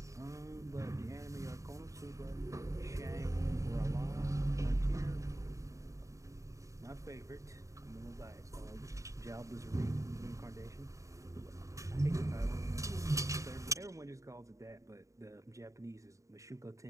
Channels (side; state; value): left; late; 0.15 ms